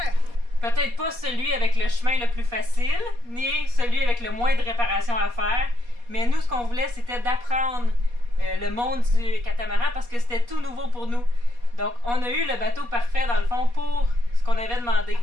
Peut-être pas celui avec le chemin le plus facile, ni celui avec le moins de réparations à faire, mais nous, ce qu'on voulait, c'était d'apprendre le monde du catamaran parce que c'était tout nouveau pour nous. Donc, on a eu le bateau parfait, dans le fond, pour ce qu'on avait demandé.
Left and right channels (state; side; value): late; left; 4.2 ms